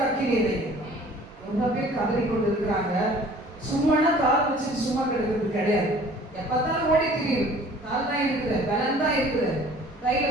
அக்கினியை வைங்க. ரொம்ப பேர் கதறி கொண்டு இருக்கிறாங்க. சும்மானா கால் வச்சு சும்மா கிடக்கிறது கிடையாது. எப்பத்தாலும் ஓடி திரியும், கால் தான் இருக்குது, பலன் தான் இருக்குது, கையில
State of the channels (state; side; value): normal; both; correlation 0.50